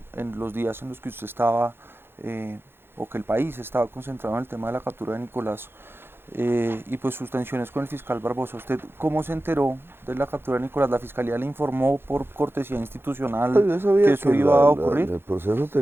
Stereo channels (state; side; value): late; left; 0.11 ms